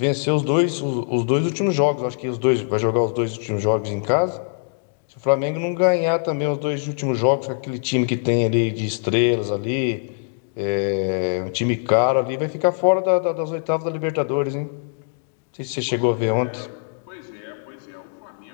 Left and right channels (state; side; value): silent; right; digital silence